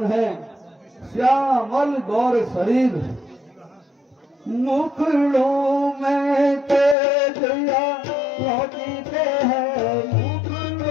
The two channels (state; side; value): drops out; right; at 7.0 s